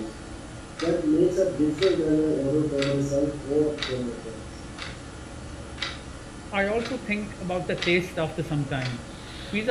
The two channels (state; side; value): identical; both; correlation 1.00